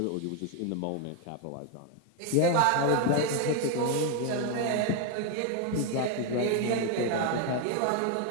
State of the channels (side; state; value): both; different; correlation 0.01